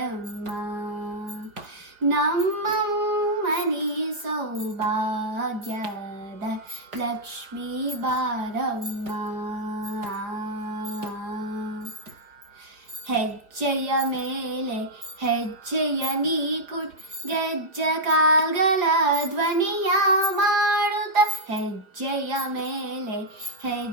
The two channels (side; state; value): left; late; 4.9 ms